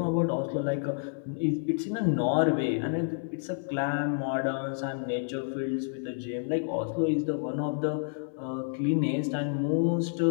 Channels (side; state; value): right; silent; digital silence